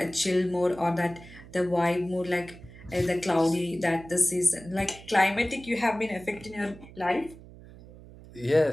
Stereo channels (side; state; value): right; noise; hum, 19 dB below the sound